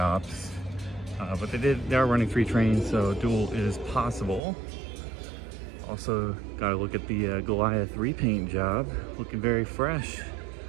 But they are running 3 trains, so duel is possible. Also, gotta look at the Goliath repaint job, looking very fresh.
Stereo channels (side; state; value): left; drops out; at 4.4 s